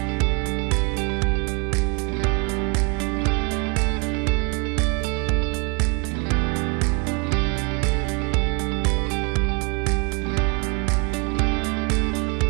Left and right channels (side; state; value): left; quieter; 32.3 dB